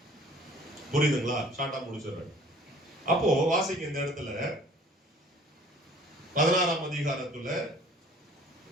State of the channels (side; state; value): both; normal; correlation 0.51